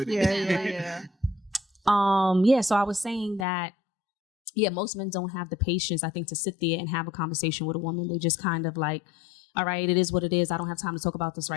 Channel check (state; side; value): drops out; right; at 3.5 s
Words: it. So I was saying that, most men don't have the patience, I think, to sit there and have a conversation with a woman. They just kind of like, all right, it is what it is. I don't have time to talk about this